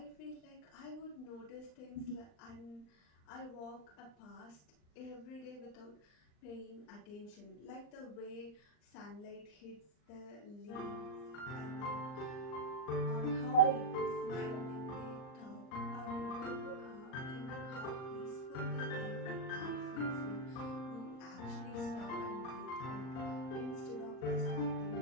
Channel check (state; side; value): late; right; 39 ms